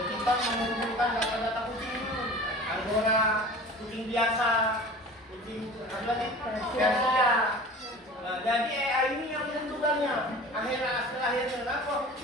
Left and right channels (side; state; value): both; normal; correlation 0.40